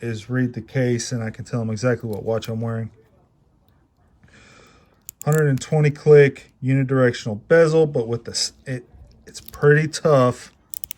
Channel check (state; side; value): identical; both; correlation 1.00